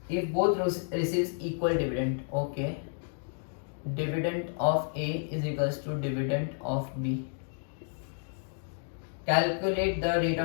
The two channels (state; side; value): silent; right; digital silence